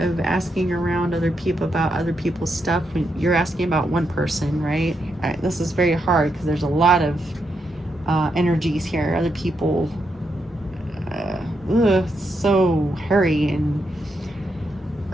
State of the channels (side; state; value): both; normal; correlation 0.82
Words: asking around other people about other people's stuff when you're asking about one person, right? This is very hard because there's a lot of energies here. Other people, so hairy and